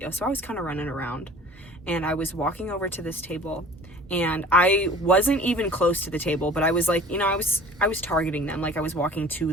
So I was kind of running around. And I was walking over to this table. And I wasn't even close to the table, but I was like, you know, I was targeting them. Like, I was walking to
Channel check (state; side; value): normal; both; correlation 0.45